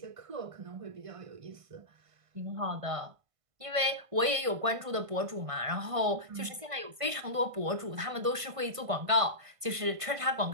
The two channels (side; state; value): left; late; 1.5 ms